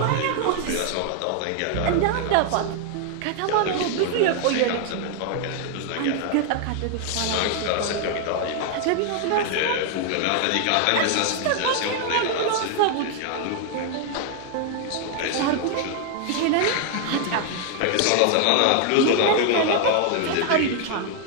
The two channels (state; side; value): different; both; correlation 0.00